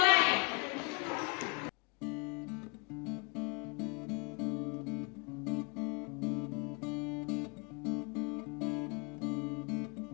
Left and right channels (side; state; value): right; quieter; 31.6 dB